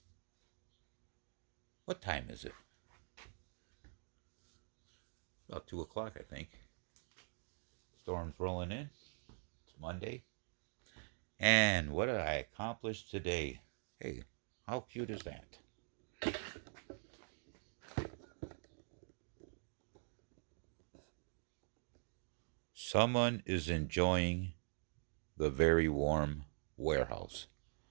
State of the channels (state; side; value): silent; left; digital silence